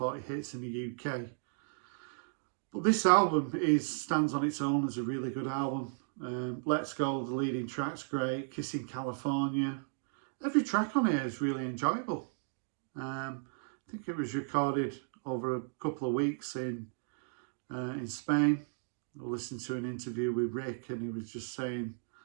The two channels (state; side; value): silent; left; digital silence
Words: hits in the UK. But this album stands on its own as a really good album. Let's Go, the leading track's great. Kissing California. Every track on here is really enjoyable. I think it was recorded over a couple of weeks in Spain. I listened to an interview with Rick, and he was just saying